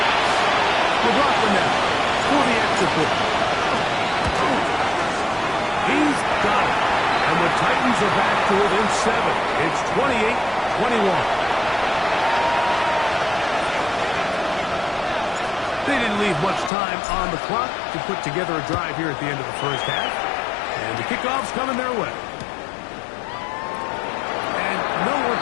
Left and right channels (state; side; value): drops out; right; at 16.7 s